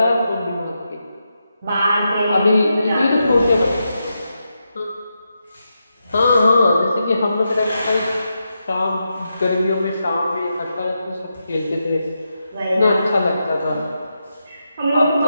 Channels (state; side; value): inverted; both; correlation -0.86